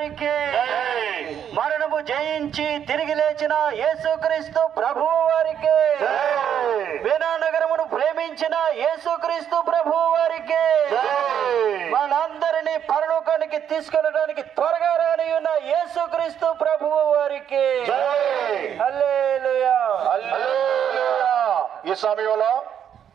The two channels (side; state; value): left; quieter; 9.0 dB